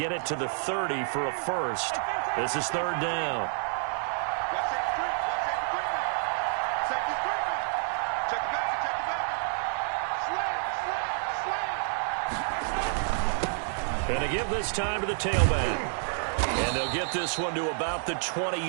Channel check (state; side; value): silent; left; 59 dB below the other